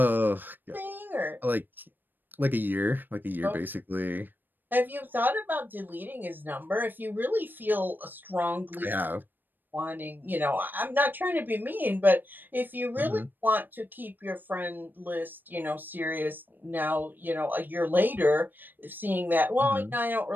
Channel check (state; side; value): late; left; 0.092 ms